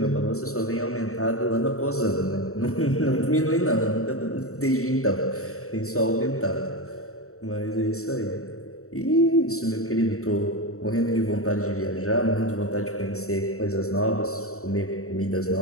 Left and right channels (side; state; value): right; late; 0.64 ms